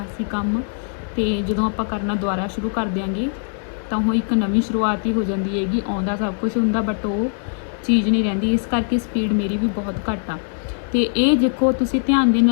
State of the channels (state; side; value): silent; right; digital silence